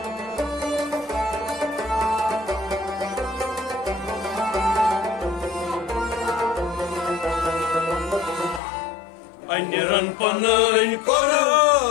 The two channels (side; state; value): right; drops out; at 8.6 s